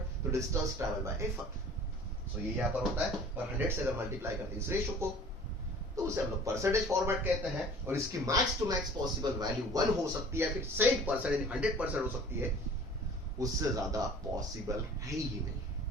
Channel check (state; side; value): normal; both; correlation 0.47